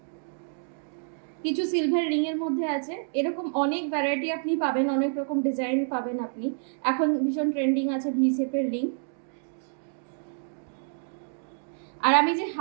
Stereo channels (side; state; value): left; silent; 59 dB below the other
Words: কিছু সিলভার রিং এর মধ্যে আছে, এরকম অনেক ভ্যারাইটি আপনি পাবেন, অনেক রকম ডিজাইন পাবেন আপনি। এখন ভীষণ ট্রেন্ডিং আছে ভি শেপের রিং। আর আমি যে